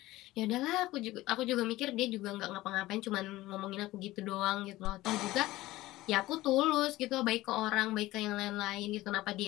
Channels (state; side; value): quieter; right; 17.5 dB